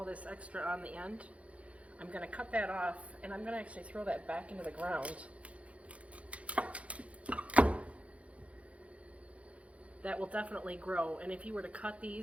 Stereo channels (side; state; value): left; late; 0.064 ms